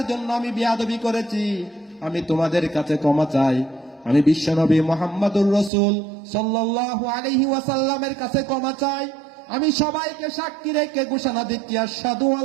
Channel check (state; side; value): drops out; left; at 5.7 s